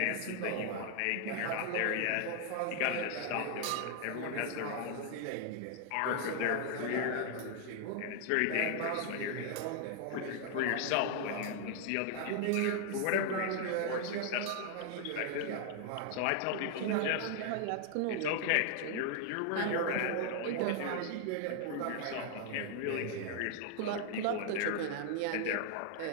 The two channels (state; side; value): different; both; correlation 0.00